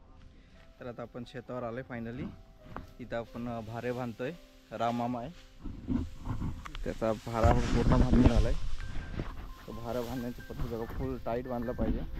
तर आता आपण शेतावर आलोय फायनली। इथं आपण भारे बांधतोय। राममामा आहे, त्याचा भारा पूर्ण बांधून झालाय। तो भारा बांधण्याची पद्धत बघा, फुल टाईट बांधला पाहिजे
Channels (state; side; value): identical; both; correlation 1.00